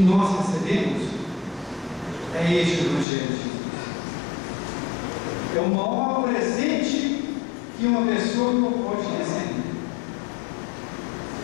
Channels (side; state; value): right; drops out; at 3.1 s